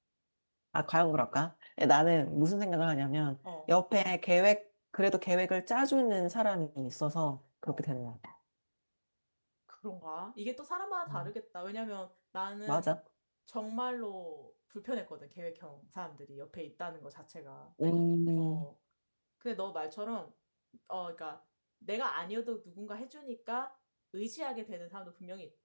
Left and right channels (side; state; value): both; inverted; correlation -1.00